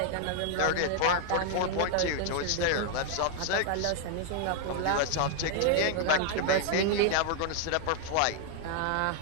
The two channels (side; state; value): both; different; correlation 0.00